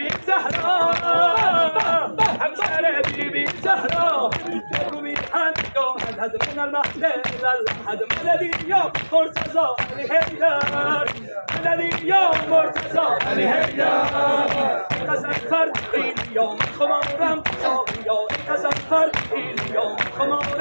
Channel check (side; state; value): both; inverted; correlation -1.00